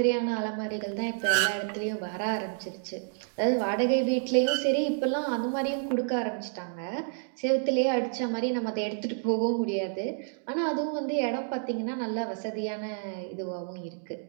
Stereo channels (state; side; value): silent; left; digital silence